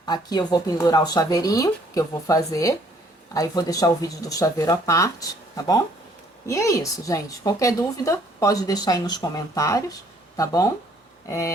aqui eu vou pendurar o chaveirinho, que eu vou fazer. Aí, vou deixar o vídeo do chaveiro à parte, tá bom? E é isso, gente. Qualquer dúvida, pode deixar aí nos comentários, tá bom?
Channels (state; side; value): normal; both; correlation 0.62